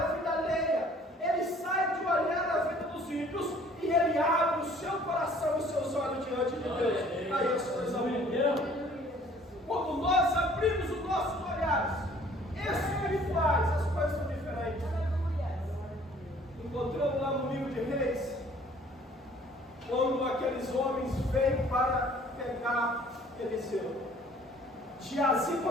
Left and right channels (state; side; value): normal; both; correlation 0.55